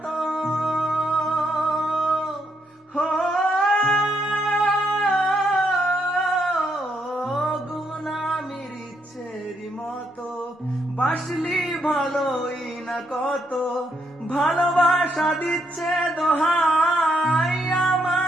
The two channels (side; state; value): both; normal; correlation 0.76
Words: হো ঘুম নামির ইচ্ছেরই মতো বাসলি ভালোই না কত, ভালোবাসা দিচ্ছে দোহাই